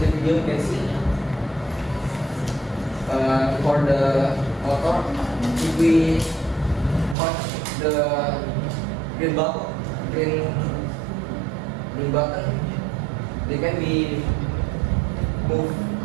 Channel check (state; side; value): drops out; left; at 7.2 s